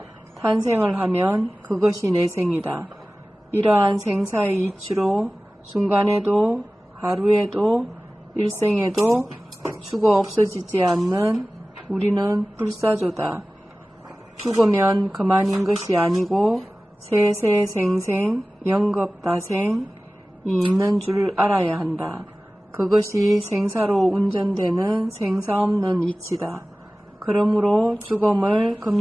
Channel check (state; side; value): normal; both; correlation 0.97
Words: 탄생을 하면 그것이 내생이다. 이러한 생사의 이치로 순간에도 하루에도 일생에도 죽어 없어지지 않는 우리는 불사조다. 죽으면 그만인 것이 아니고 세세생생 영겁다생이 있는 줄 알아야 한다. 그것이 생사로 운전되는 생사 없는 이치다. 그러므로 죽음을